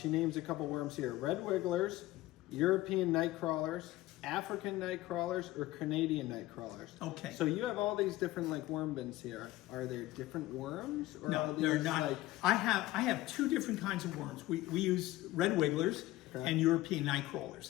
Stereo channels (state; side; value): quieter; right; 17.2 dB